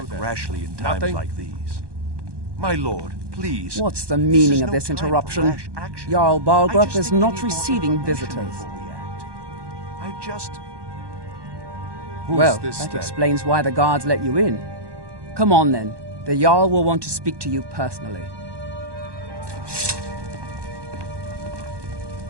rashly in times like these. My lord, please. What's the meaning of this interruption? Jarl Balgrup is not receiving visitors. I just... Well, that explains why the guards let you in. Come on then. The Jarl will want to speak to you personally.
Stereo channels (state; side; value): late; left; 1.1 ms